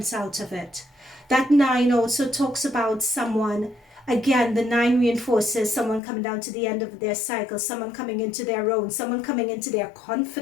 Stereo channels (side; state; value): right; drops out; at 6.0 s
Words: out of it. That 9 also talks about someone. Again, the 9 reinforces someone coming down to the end of their cycle, someone coming into their own, someone coming into their